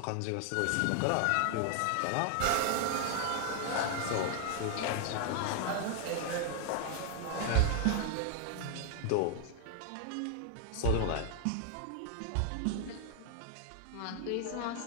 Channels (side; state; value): both; different; correlation 0.00